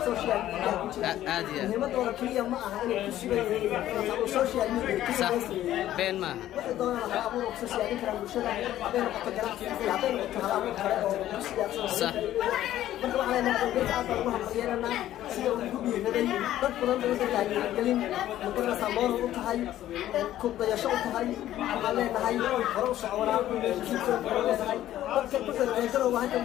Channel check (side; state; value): right; quieter; 13.1 dB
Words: سوشيال ميديا عادي مهمة دولة كلية معها إنه كسبة سوشيال ميديا صح بين ما واحد دولة أبوه سوشيال ميديا مشهورة بين قطعات بين قطعات صح marka waxa la leeyahay aad baan wax yeelana sida uu ku biiray dad badan oo dadka galin muqarrar samoor u tahay ku dayasho u tahay waxa leenahay hore u socona dadka ku soo waxa la